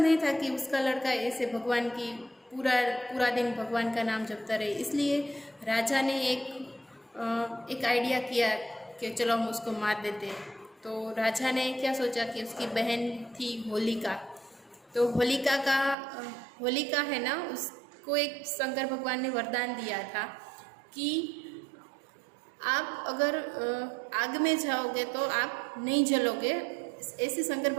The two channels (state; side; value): drops out; left; at 16.0 s